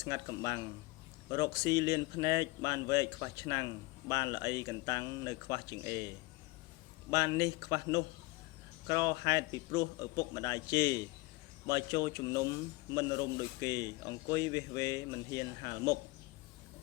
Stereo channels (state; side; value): quieter; right; 22.2 dB